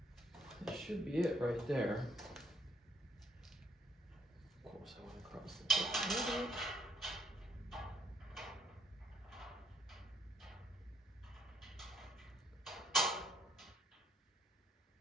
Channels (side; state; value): both; normal; correlation 0.69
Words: That should be it right there. Of course, I want to cross the top.